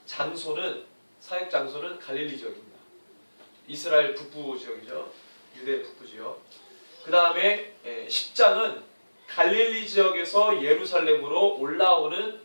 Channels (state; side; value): inverted; both; correlation -1.00